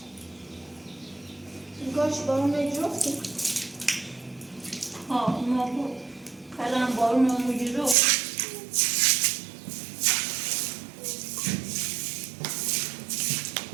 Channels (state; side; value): drops out; left; at 8.0 s